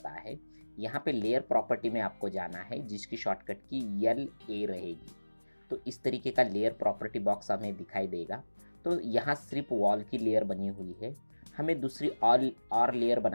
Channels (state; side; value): inverted; both; correlation -1.00